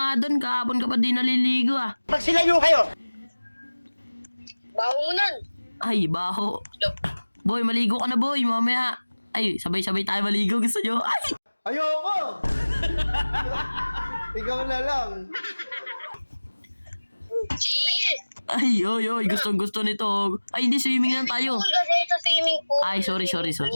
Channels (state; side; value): inverted; both; correlation -1.00